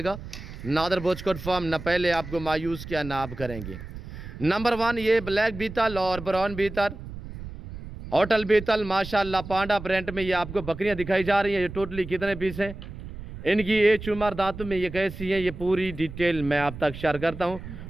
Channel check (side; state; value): right; noise; rumble, 12 dB below the sound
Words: नादर ब्रोचकोट फार्म न पहले आपको मायूस किया ना आप करेंगे। नंबर 1 ये ब्लैक बीतल और ब्राउन बीतल होटल बीतल माशाल्लाह पांडा प्रिंट में ये आपको बकरियां दिखाई जा रही हैं। ये टोटली कितने पीस हैं, इनकी एज उम्र दांतों में ये कैसी है, ये पूरी डिटेल मैं आप तक शेयर करता हूं।